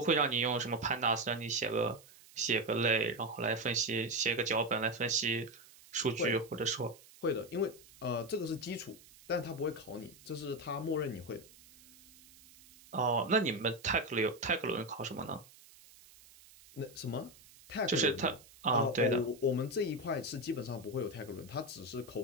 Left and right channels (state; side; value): noise; right; hiss, 23 dB below the sound